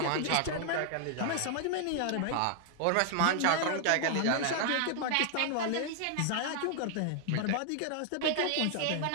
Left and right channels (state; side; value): different; both; correlation 0.00